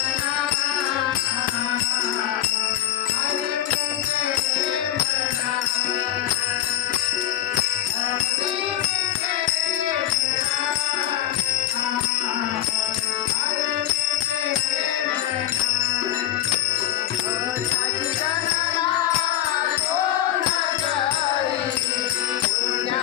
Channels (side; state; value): right; quieter; 12.3 dB